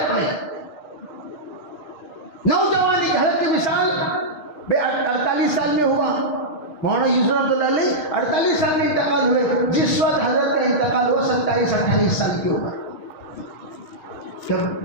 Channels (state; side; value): late; right; 6.6 ms